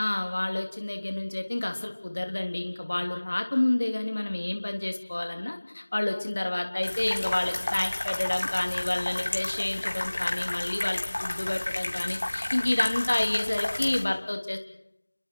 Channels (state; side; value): inverted; both; correlation -1.00